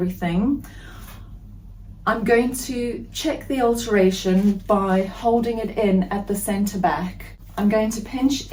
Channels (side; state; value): both; identical; correlation 1.00